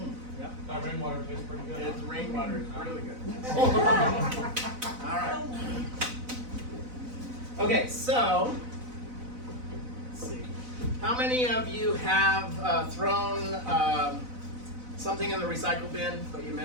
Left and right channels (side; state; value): left; late; 4.0 ms